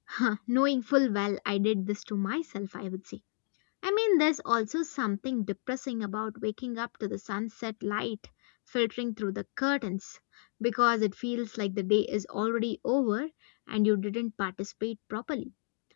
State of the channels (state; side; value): silent; right; digital silence